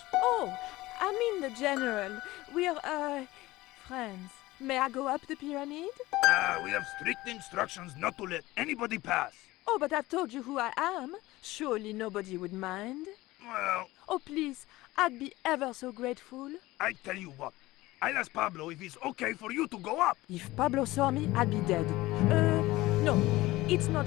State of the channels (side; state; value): right; quieter; 18.6 dB